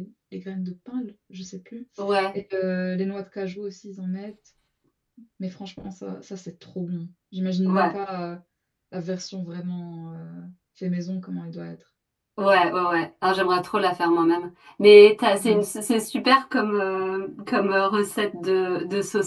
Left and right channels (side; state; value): both; identical; correlation 1.00